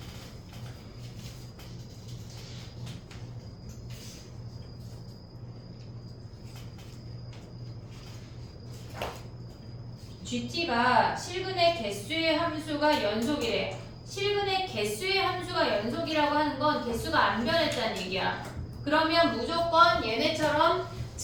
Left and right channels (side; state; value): both; identical; correlation 1.00